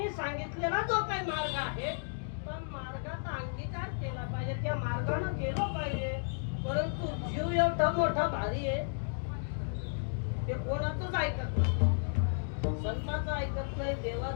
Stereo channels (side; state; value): right; silent; digital silence